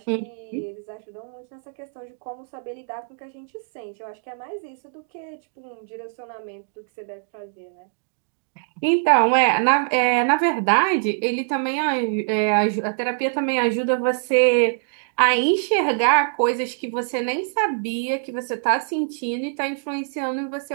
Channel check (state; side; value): silent; left; digital silence